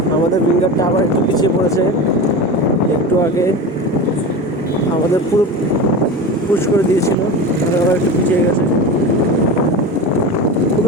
আমাদের উইঙ্গারটা আবার একটু পিছিয়ে পড়েছে। একটু আগে আমাদের পুরো পুশ করে দিয়েছিল, আবার একটু পিছিয়ে গেছে। খুব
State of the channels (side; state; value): both; normal; correlation 0.28